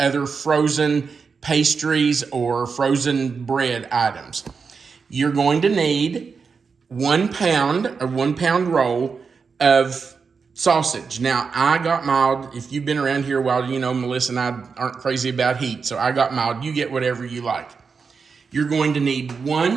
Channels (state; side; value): quieter; left; 5.3 dB